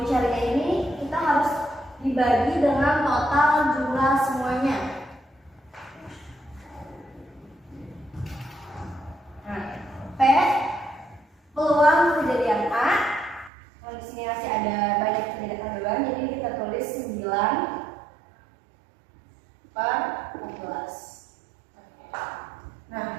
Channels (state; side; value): drops out; left; at 13.5 s